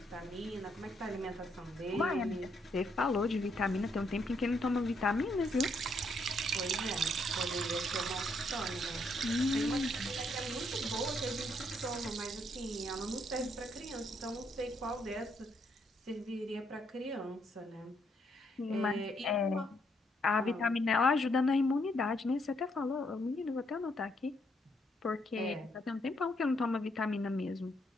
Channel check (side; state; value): both; normal; correlation 0.74